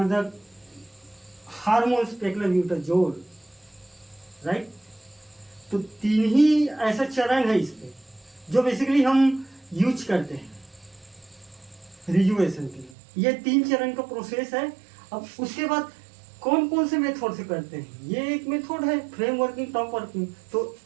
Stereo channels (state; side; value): drops out; left; at 13.0 s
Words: the hormones paclobutrazol, right. तो 3 ही ऐसा चरण है इसमें जो basically हम use करते हैं रिजुवेशन के लिए। ये 3 चरण का प्रोसेस है। अब उसके बाद कौन कौन से मेथड से करते हैं, ये एक मेथड है फ्रेम वर्किंग, टॉप वर्किंग। तो